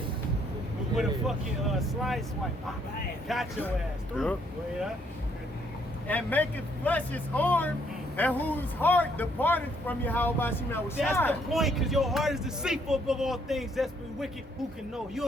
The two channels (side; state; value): both; normal; correlation 0.69